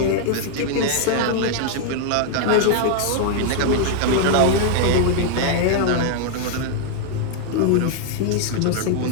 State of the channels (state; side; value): different; both; correlation 0.00